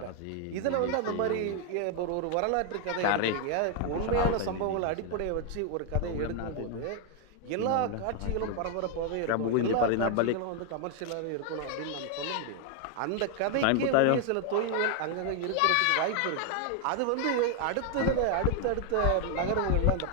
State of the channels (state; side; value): different; both; correlation 0.00